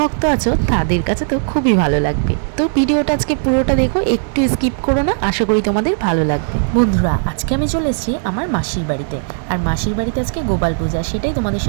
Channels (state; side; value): silent; left; 64 dB below the other